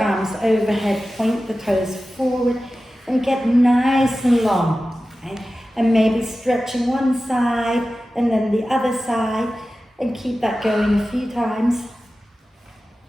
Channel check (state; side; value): normal; both; correlation 0.95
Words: overhead, point the toes forward, and get nice and long, okay? And maybe stretching one side and then the other side, and keep that going a few times.